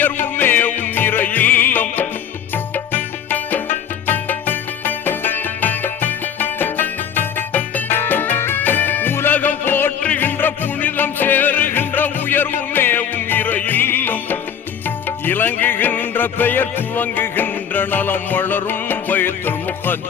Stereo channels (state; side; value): quieter; right; 8.2 dB